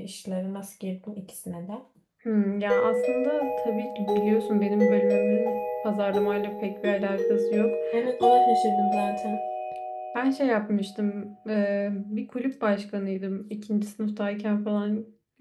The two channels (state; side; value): identical; both; correlation 1.00